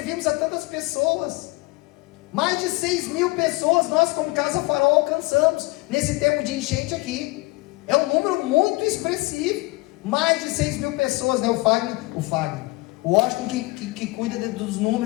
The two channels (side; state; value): right; quieter; 22.9 dB